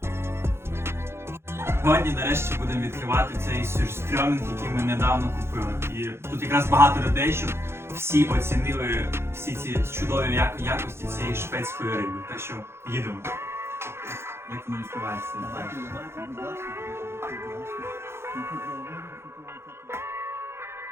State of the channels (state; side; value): late; left; 0.12 ms